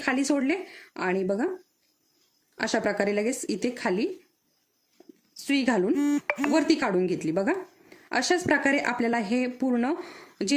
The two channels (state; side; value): identical; both; correlation 1.00